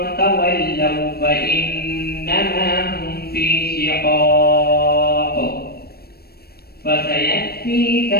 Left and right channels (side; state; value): right; late; 0.45 ms